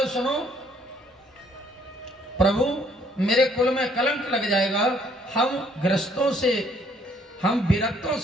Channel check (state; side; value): normal; both; correlation 0.64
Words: सुनो प्रभु मेरे कुल में कलंक लग जाएगा, हम गृहस्थों से, हम विरक्तों